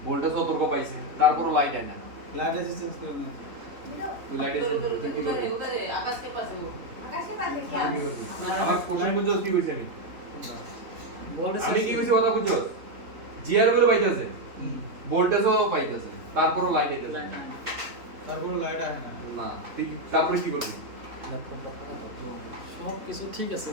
ভোল্টেজ সতর্ক পাইছে তারপরও লাইট আয় না লাইট আছে চেঞ্জ করে দিন তুই লাইট এসে কি করবি आकाश के पास है वो आकाश के पास है क्या আমার কোশ্চেন বুঝছস কি কইছি আমি বলে আমি কি কইছি কথা বুঝছস জিআর ভ্যালু পাইতেছে ভোল্টেজও পাইতেছে তারপরও লাইট আইতেছে না তারপর লাইট আসে না না তুই তারপরে কি করবি সব কিছু ঠিক আছে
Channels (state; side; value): late; left; 3.5 ms